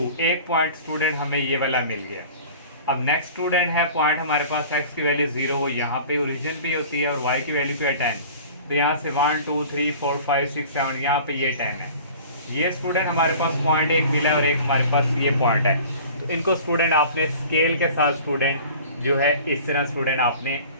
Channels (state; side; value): inverted; both; correlation -0.43